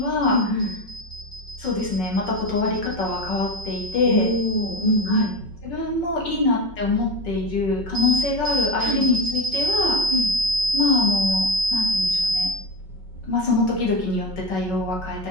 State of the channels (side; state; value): right; late; 5.4 ms